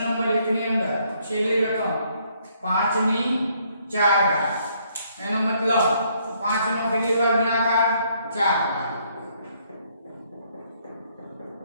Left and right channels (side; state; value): both; inverted; correlation -0.68